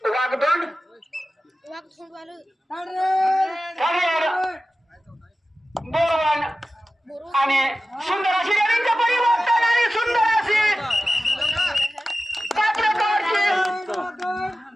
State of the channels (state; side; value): normal; both; correlation 0.95